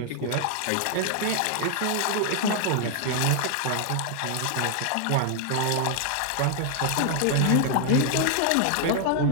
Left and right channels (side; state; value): both; different; correlation 0.00